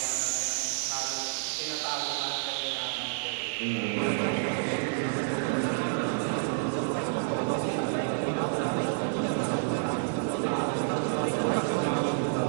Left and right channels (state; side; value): silent; left; digital silence